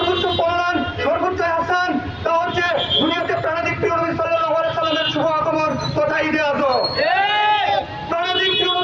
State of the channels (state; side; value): noise; right; rumble, 29 dB below the sound